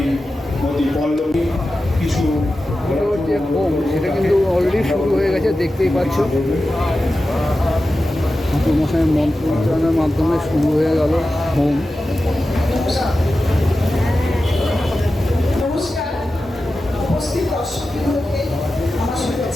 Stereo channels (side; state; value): both; normal; correlation 0.93